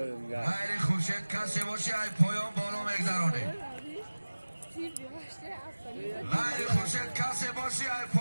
میگه غیر خورشید کسی باشه ای پایان بالا میگذرانه غیر خورشید کسی باشه ای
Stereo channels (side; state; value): both; inverted; correlation -1.00